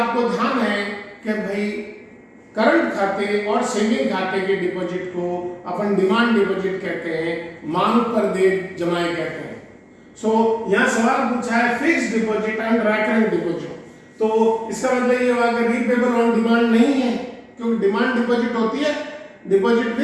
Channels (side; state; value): both; identical; correlation 1.00